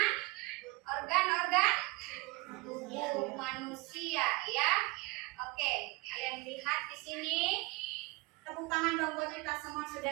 organ-organ tubuh manusia ya. Oke, kalian lihat di sini. Tepuk tangan dong buat kita semua, sudah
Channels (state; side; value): quieter; left; 24.3 dB